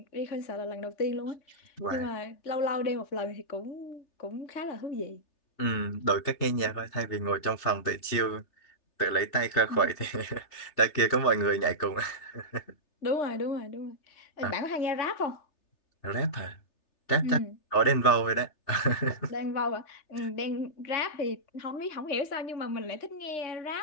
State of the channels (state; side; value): late; right; 3.3 ms